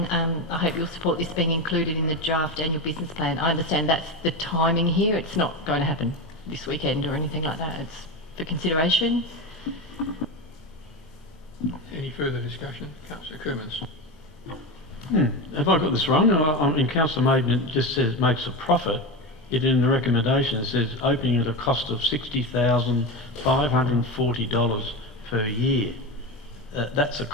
I hope you'll support this being included in the draft annual business plan. I understand that's the timing here. It's not going to happen this weekend or anything like that. It's for consideration. Any further discussion? Councillor Coomans. Have I got this wrong? In Councillor Maidment just says makes a profit. Yet in the recommendation it says opening at a cost of $60,540 per year. That's a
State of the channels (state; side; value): normal; both; correlation 0.20